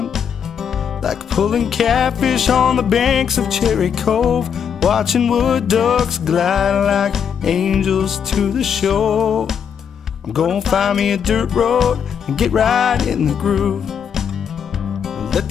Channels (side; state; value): right; quieter; 7.6 dB